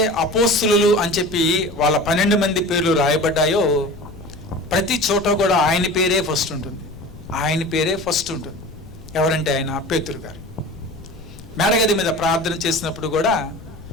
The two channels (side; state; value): left; noise; rumble, 17 dB below the sound